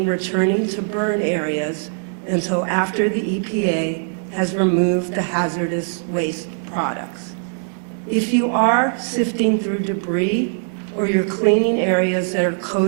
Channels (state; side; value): silent; left; 65 dB below the other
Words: returning to burn areas until after the EPA has removed the hazardous waste products. If you are sifting through debris or you're cleaning areas that are